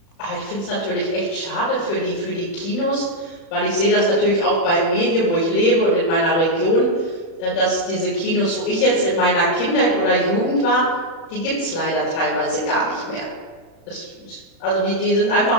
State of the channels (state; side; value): late; right; 36 ms